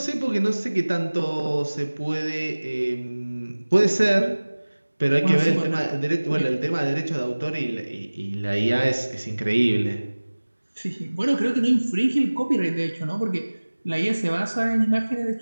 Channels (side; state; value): both; inverted; correlation -1.00